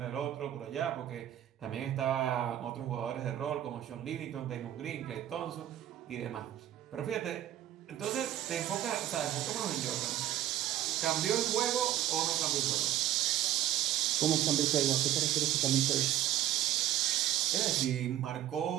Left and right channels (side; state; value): left; quieter; 12.5 dB